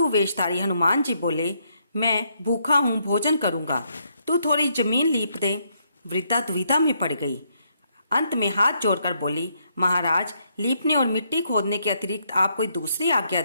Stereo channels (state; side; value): inverted; both; correlation -0.74